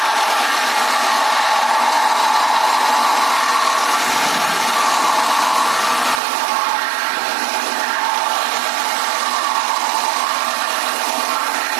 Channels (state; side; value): drops out; left; at 6.2 s